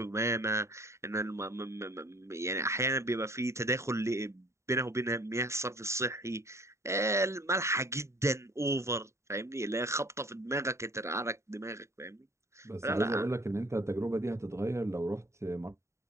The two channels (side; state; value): left; late; 0.14 ms